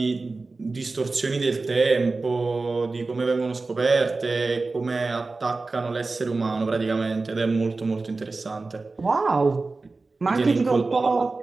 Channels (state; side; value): quieter; left; 3.7 dB